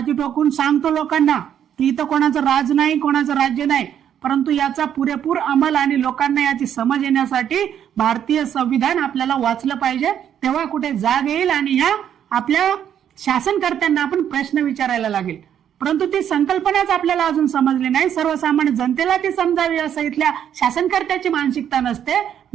ठोकून सांगतो लोकांना की इथं कोणाचं राज नाही, कोणाचं राज्य नाही. परंतु याचा पुरेपूर अंमल आणि लोकांना याची समज येण्यासाठी भारतीय संविधान आपल्याला वाचलं पाहिजे, तेव्हा कुठे जाग येईल आणि ह्या आपल्या शासनकर्त्यांना आपण प्रश्न विचारायला लागेल. परंतु ती संकल्पनाच आपल्याला अजून समजली नाही. सर्वसामान्य जनतेला ती समजावी असं इथल्या शासनकर्त्याची मानसिकता नसते.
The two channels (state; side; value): quieter; left; 9.5 dB